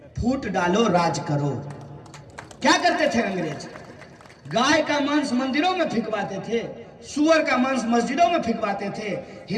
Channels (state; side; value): identical; both; correlation 1.00